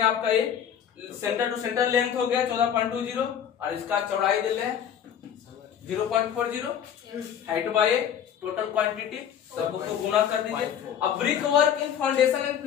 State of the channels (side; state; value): right; quieter; 8.9 dB